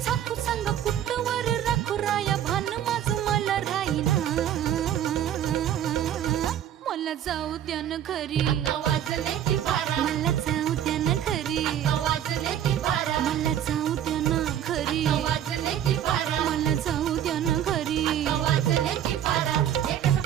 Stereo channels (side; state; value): left; quieter; 10.4 dB